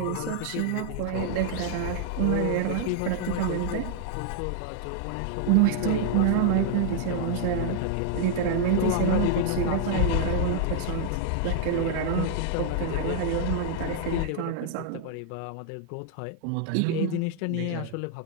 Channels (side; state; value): both; different; correlation -0.01